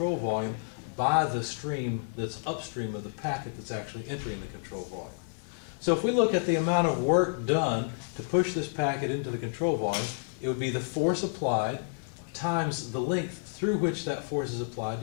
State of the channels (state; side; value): silent; right; digital silence